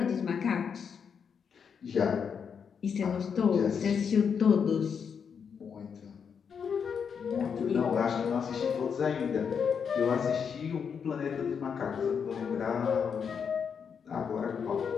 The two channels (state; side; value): quieter; right; 6.8 dB